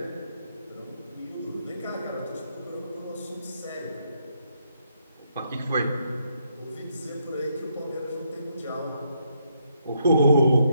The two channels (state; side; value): inverted; both; correlation -0.76